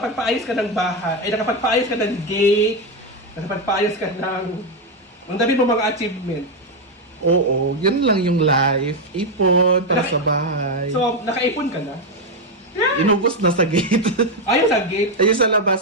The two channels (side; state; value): both; normal; correlation 0.06